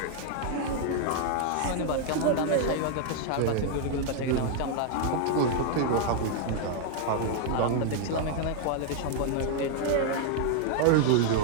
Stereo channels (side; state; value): both; different; correlation 0.00